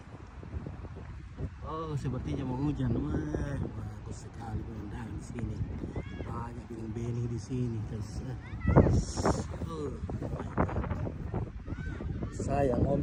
Oh, sepertinya mau hujan. Wah, bagus sekali pemandangan di sini. Banyak bening-bening di sini. Oh, sayang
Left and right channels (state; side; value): identical; both; correlation 1.00